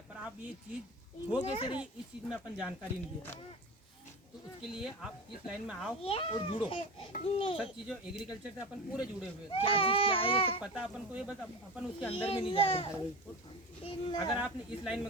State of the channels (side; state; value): both; normal; correlation 0.27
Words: पर आप ये चीज़ हो कैसे रही इस चीज़ में अपन जानकारी नहीं दे पाए। तो उसके लिए आप इस लाइन में आओ और जुड़ो, सब चीज़ों एग्रीकल्चर से अपन पूरे जुड़े हुए, क्या चीज़ क्या है ये सब पता अपन को, ये बस अपन उसके अंदर में नहीं जा रहे। अगर आपने इस लाइन